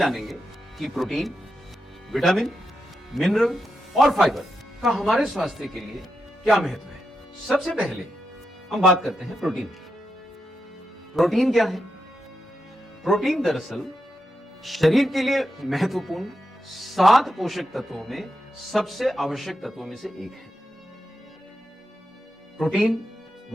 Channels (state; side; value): normal; both; correlation 0.86